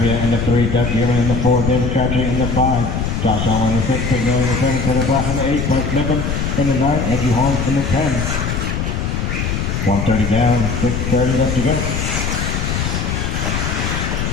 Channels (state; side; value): noise; left; rumble, 1 dB below the sound